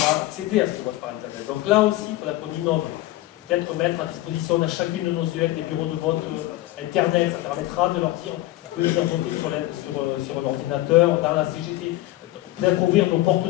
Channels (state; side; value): quieter; right; 16.7 dB